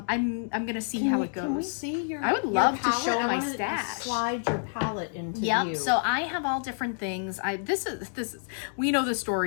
gonna see how it goes. Can we see your? I would your love to palette? show I my wanna, stash. Slide your palette into Yep. view. So I have all different things. This is we know the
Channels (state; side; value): silent; right; digital silence